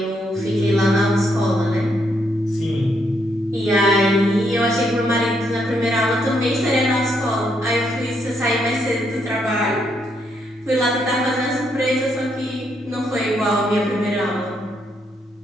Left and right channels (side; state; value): both; normal; correlation 0.76